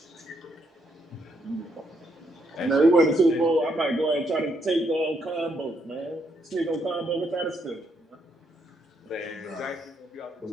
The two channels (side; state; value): both; normal; correlation 0.75